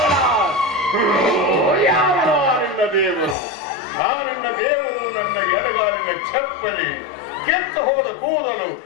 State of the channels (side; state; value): right; drops out; at 3.4 s